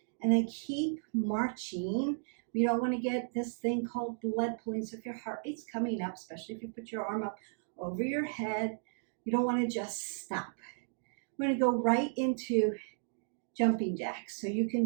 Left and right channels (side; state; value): left; silent; digital silence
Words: and then keep marching. We don't want to get this thing called blood pooling. So if your heart rate's coming up, especially if you put your arm up over your head, you don't want to just stop. We're going to go right into jumping jacks. So you can